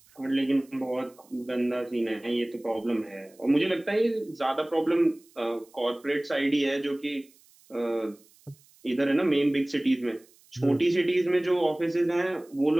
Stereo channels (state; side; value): noise; right; hiss, 29 dB below the sound